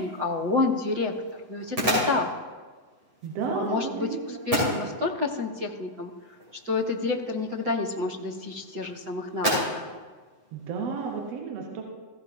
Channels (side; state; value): left; late; 7.9 ms